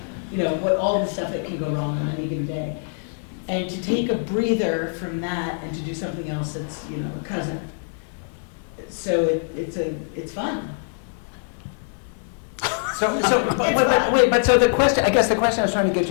what all the stuff that can go wrong on any given day. And to take a breather from that and to do something else that's, a cousin. So it's fun. But so the question, I guess the question I was trying to get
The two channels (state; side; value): silent; right; digital silence